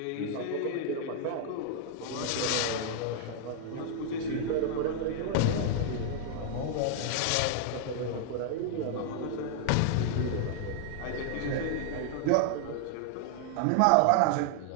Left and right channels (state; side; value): different; both; correlation 0.00